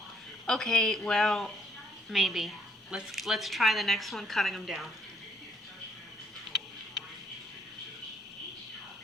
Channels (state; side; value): normal; both; correlation 0.66